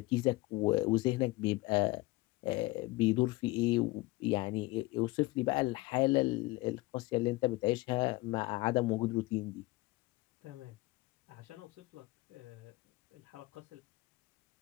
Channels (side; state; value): right; quieter; 21.2 dB